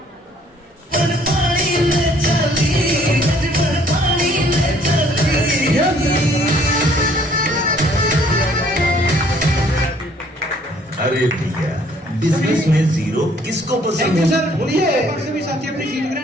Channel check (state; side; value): normal; both; correlation 0.61